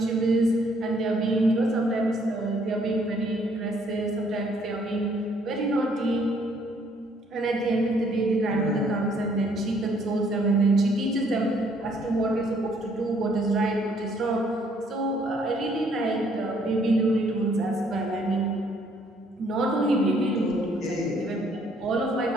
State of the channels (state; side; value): normal; both; correlation 0.65